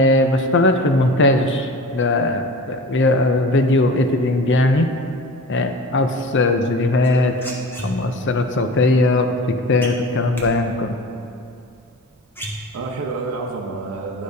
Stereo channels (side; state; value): both; normal; correlation 0.36